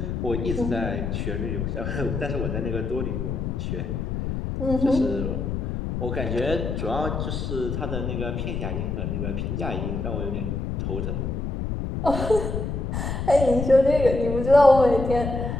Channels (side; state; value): left; noise; rumble, 3 dB below the sound